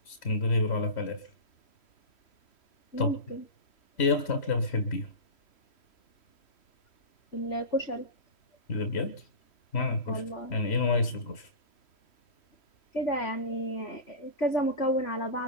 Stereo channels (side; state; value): right; late; 3.1 ms